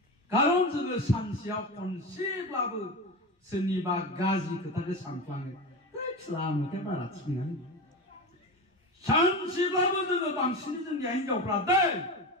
खारन जोङो सानसेयाव खनसेब्लाबो सोरनिबा गाज्रि खोथाखौ सानफ्लाङो। लामाखौ बारा थिग नङा। सानसेब्लाबो जोङो बांसिन जोंनि हिनजावफ्रा दै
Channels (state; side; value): normal; both; correlation 0.24